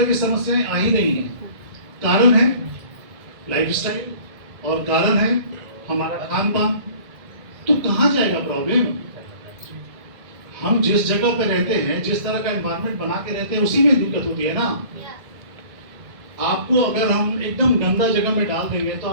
की समस्याएं आ ही रही हैं। कारण है लाइफस्टाइल और कारण है हमारा खान पान। तो कहाँ जाएगा प्रॉब्लम? हम जिस जगह पे रहते हैं, जिस तरह का एनवायरनमेंट बना के रहते हैं, उसी में दिक्कत होती है ना। आपको अगर हम एकदम गंदा जगह में डाल देंगे तो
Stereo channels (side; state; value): left; late; 2.1 ms